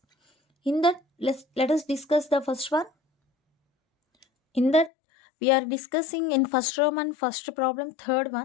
In that, let us discuss the first one. In that, we are discussing in first Roman first problem, third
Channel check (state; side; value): drops out; right; at 4.9 s